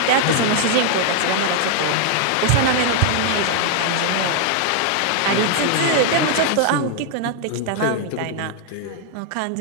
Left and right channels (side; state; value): both; different; correlation 0.00